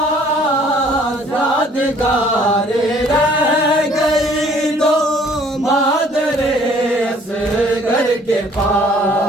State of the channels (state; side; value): normal; both; correlation 0.57